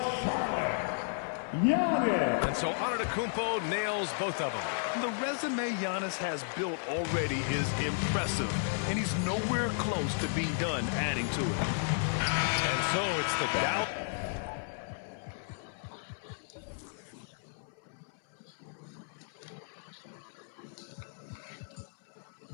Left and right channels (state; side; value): silent; right; 56 dB below the other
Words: Charlotte, Giannis. And so Antetokounmpo nails both of them. The resume Giannis has built already is impressive, and he's nowhere close to being done adding to it. And so it's the Dallas.